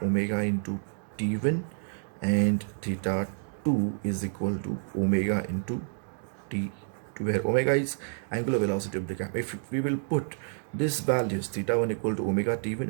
omega into t1, and theta 2 is equal to omega into t2, where omega is angular velocity of the cam. If we will put these values, theta 1 equal to omega t1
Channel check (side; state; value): left; silent; digital silence